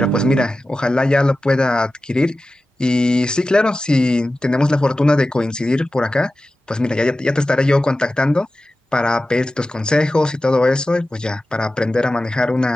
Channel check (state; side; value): normal; both; correlation 0.95